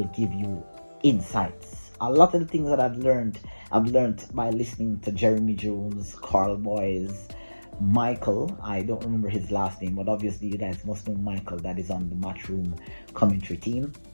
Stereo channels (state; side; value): inverted; both; correlation -1.00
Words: give you insights. A lot of the things that I've learned by listening to Jeremy Jones, Carl Boys, Michael. I don't remember his last name, but obviously you guys must know Michael, that is on the Matchroom commentary team.